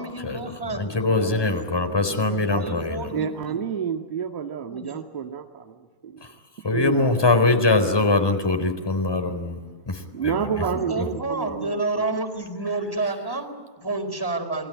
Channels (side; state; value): right; late; 1.2 ms